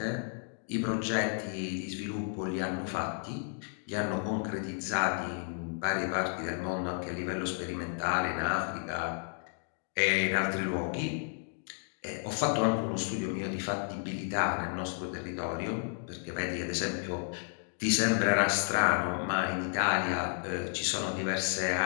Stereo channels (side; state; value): right; silent; 56 dB below the other